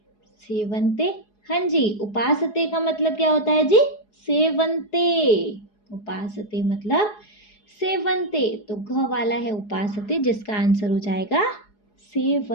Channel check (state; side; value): late; right; 4.8 ms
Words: सेवन्ते, हाँ जी उपासते का मतलब क्या होता है जी, सेवन्ते, उपासते मतलब सेवन्ते, तो घ वाला है उपासते, जिसका आंसर हो जाएगा